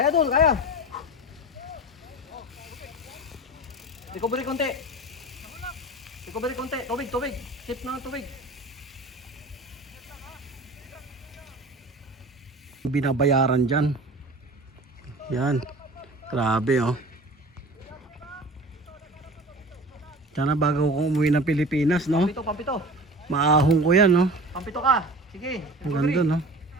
doon, kaya. Recovery konti. Recovery konti. Tubig, tubig. Sip na ng tubig. Binabayaran dyan. Yan. Grabe oh. Sana bago ko umuwi ng Pilipinas, no? Pampito, pampito. Maahong ko yan, no? Pampito ka. Sige. Ang recovery. ganda, no?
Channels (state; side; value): normal; both; correlation 0.38